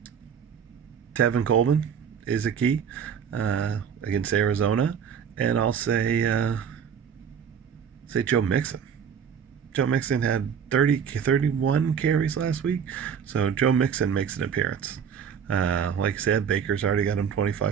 Tevin Coleman is a key against Arizona. And I'll say Joe Mixon. Joe Mixon had 31 carries last week. So Joe Mixon makes an appearance. Like I said, Baker's already got him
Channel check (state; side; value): quieter; left; 7.5 dB